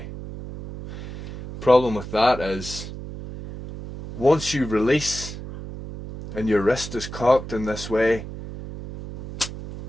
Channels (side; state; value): right; noise; hum, 10 dB below the sound